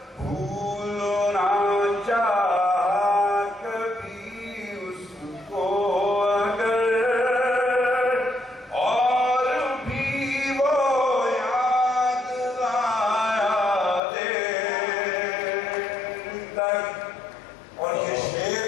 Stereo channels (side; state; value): right; drops out; at 14.0 s